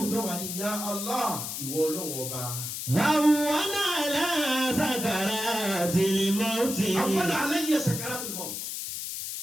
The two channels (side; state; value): left; noise; hiss, 5 dB below the sound